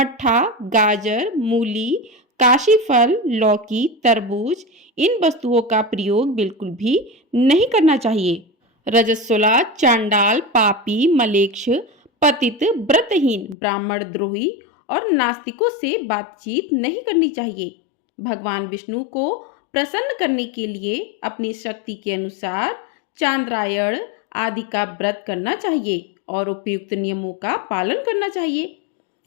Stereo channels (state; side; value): drops out; right; at 13.6 s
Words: गाजर, मूली, काशी फल, लौकी, तरबूज, इन वस्तुओं का प्रयोग बिल्कुल भी नहीं करना चाहिए। रजस्वला, चांडाल, पापी, मलेच्छ, पतित, व्रतहीन, ब्राह्मण द्रोही और नास्तिकों से बातचीत नहीं करनी चाहिए। भगवान विष्णु को प्रसन्न करने के लिए अपनी शक्ति के अनुसार चांद्रायण आदि का व्रत करना चाहिए और उपयुक्त नियमों का पालन करना चाहिए।